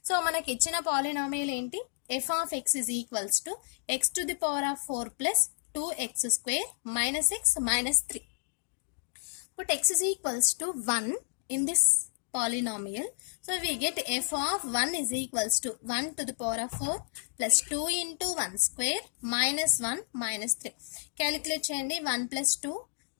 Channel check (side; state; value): right; silent; digital silence